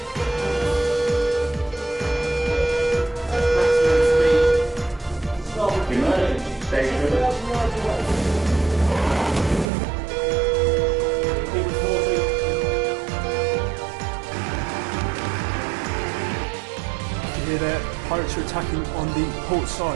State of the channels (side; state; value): left; drops out; at 9.7 s